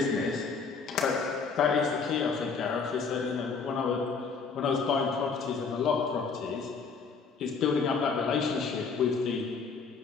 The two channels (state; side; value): quieter; right; 5.1 dB